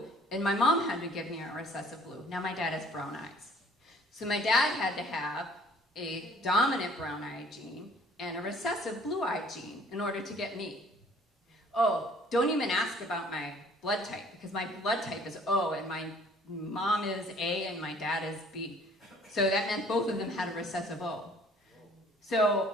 and my mom had to give me a recessive blue. Now my dad has brown eyes. So my dad had to have a dominant brown eye gene and a recessive blue eye gene in order to get me. Oh, don't even ask about my blood type, because my blood type is O, and my mom is A, and my dad is B. So that meant both of them had a recessive O. So,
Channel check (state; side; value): normal; both; correlation 0.55